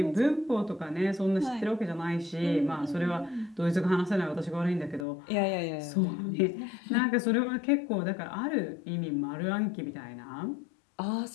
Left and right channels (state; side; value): drops out; right; at 5.1 s